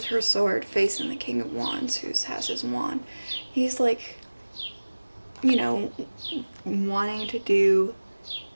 her sword facing the King of Wands, who has his wand. He's like, you know, wanting to do,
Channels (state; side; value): inverted; both; correlation -1.00